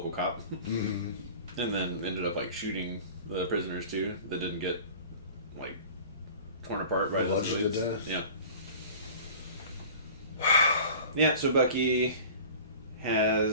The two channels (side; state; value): both; inverted; correlation -0.41